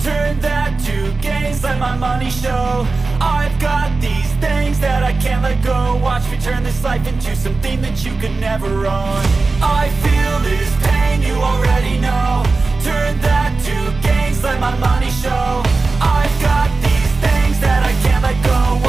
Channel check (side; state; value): left; quieter; 3.8 dB